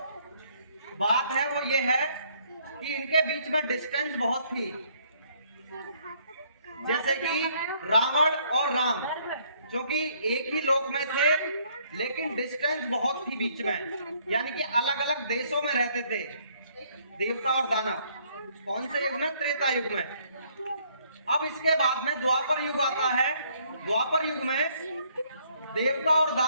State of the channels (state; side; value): inverted; both; correlation -0.65